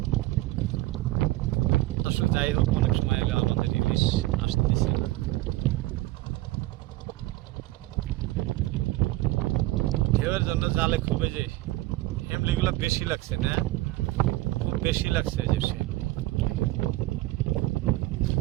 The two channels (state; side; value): quieter; left; 18.3 dB